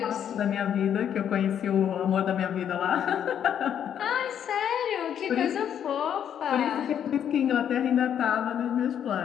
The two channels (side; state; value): right; quieter; 9.2 dB